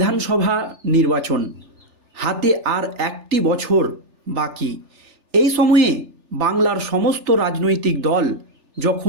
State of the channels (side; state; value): left; late; 3.4 ms